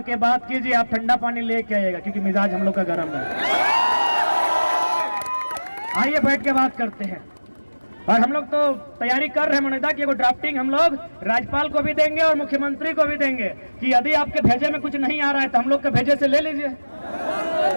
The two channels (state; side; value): inverted; both; correlation -1.00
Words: बात कीजिए। आप ठंडा पानी लेके आइएगा क्योंकि मिजाज हम लोग का गर्म है। आइए बैठ के बात करते हैं। और हम लोग तो तैयारी कर रहे हैं मनोदा की, ड्राफ्टिंग हम लोग राज्यपाल को भी देंगे और मुख्यमंत्री को भी देंगे कि यदि आपके भेजे में कुछ नहीं आ रहा है तो हम लोग के भेजे से ले लीजिए,